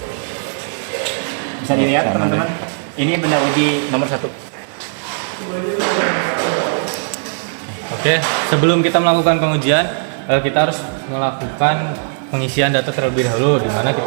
Bisa dilihat teman-teman, ini benda uji nomor 1. Oke, sebelum kita melakukan pengujian, kita harus melakukan pengisian data terlebih dahulu, di mana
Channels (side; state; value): left; silent; 55 dB below the other